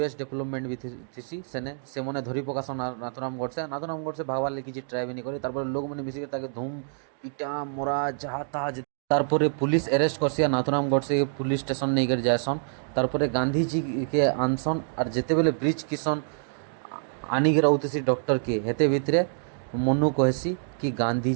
डेवलपमेंट भी थी सेने से मने धरी पकासन नाथुराम गडसे भागवार लगी किसी ट्राई भी नहीं करे तारपरे लोग मैंने मिसिक ताके धूम पिटा मरा जहाँ तहाँ तारपरे पुलिस अरेस्ट करसी नाथुराम गडसे पुलिस स्टेशन नहीं कर जाएसन तारपरे गांधीजी के आनसन और जेते बेले ब्रिज किशन आनी के रहते डॉक्टर के हेते भितरे मनु कहसी कि गांधी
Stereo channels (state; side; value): silent; left; digital silence